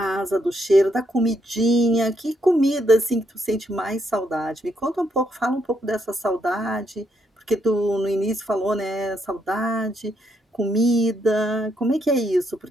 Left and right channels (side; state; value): both; normal; correlation 0.76